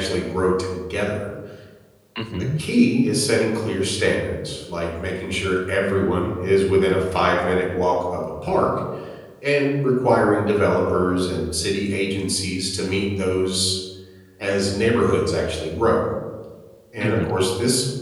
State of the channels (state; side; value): identical; both; correlation 1.00